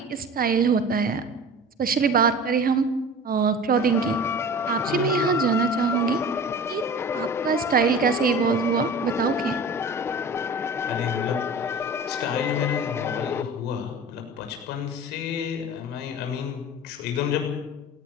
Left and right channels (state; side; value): normal; both; correlation 0.38